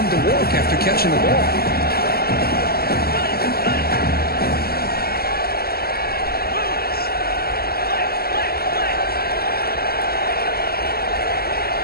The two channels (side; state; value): right; late; 0.45 ms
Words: to work after catching the ball.